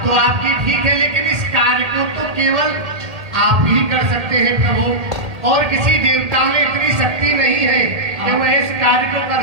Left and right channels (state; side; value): late; left; 1.8 ms